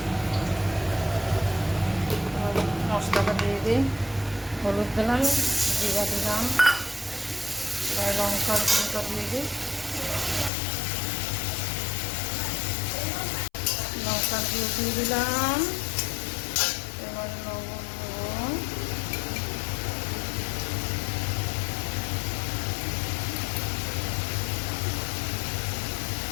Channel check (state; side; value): drops out; right; at 10.5 s